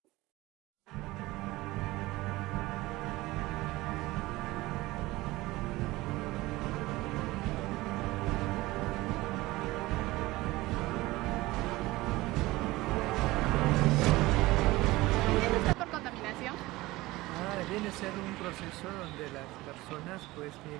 Viene a ser un proceso donde las personas pues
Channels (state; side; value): quieter; left; 19.4 dB